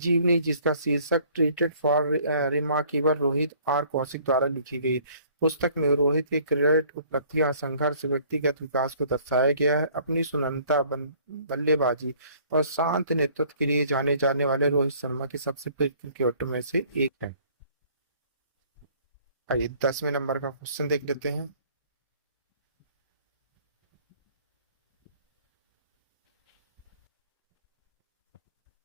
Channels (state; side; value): inverted; both; correlation -0.57